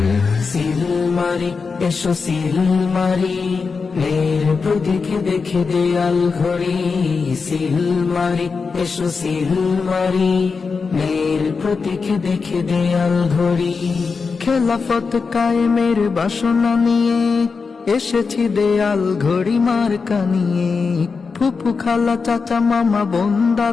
মারি এসো সিল মারি মেয়ের প্রতীক দেখে দেয়াল ঘড়ি। সিল মারি এসো সিল মারি মেয়ের প্রতীক দেখে দেয়াল ঘড়ি। খেলাফত কায়েমের বাসনা নিয়ে এসেছি দেয়াল ঘড়ি মার্কা নিয়ে। ফুফু খালা চাচা মামা বোন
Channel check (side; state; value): right; quieter; 4.9 dB